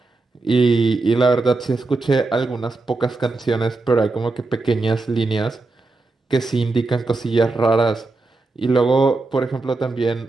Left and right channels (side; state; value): left; quieter; 3.5 dB